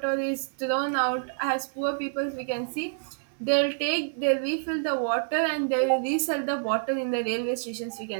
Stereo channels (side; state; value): left; silent; 60 dB below the other